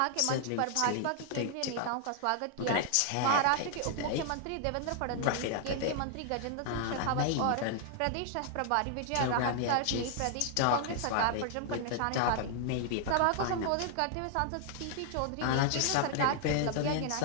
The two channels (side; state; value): both; different; correlation 0.00